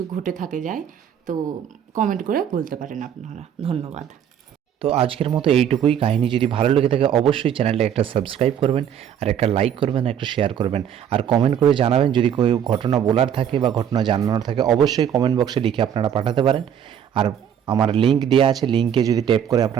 ঘটে থাকে যায় তো কমেন্ট করে বলতে পারেন আপনারা। ধন্যবাদ। তো আজকের মতো এইটুকুই। কাহিনী যদি ভালো লেগে থাকে অবশ্যই চ্যানেলটা একটা সাবস্ক্রাইব করবেন, আর একটা লাইক করবেন, একটা শেয়ার করবেন, আর কমেন্ট করে জানাবেন। যদি কোনো ঘটনা বলার থাকে বা ঘটনা জানানোর থাকে অবশ্যই কমেন্ট বক্সে লিখে আপনারা পাঠাতে পারেন। আর আমার লিঙ্ক দেওয়া আছে, লিঙ্কে যদি ট্যাপ করে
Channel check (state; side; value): quieter; left; 9.1 dB